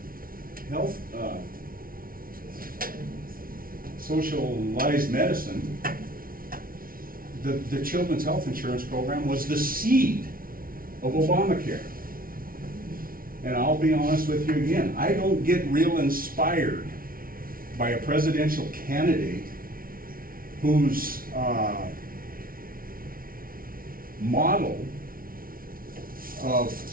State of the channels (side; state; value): left; late; 0.42 ms